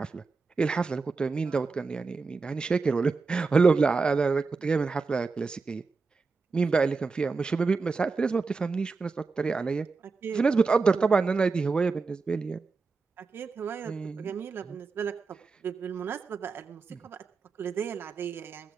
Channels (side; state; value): left; quieter; 4.4 dB